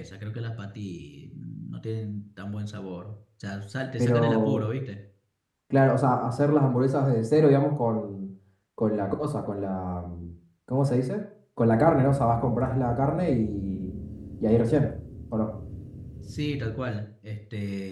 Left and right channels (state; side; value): identical; both; correlation 1.00